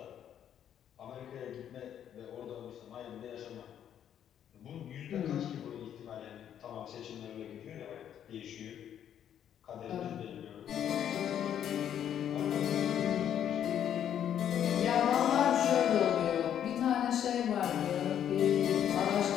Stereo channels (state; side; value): quieter; right; 9.8 dB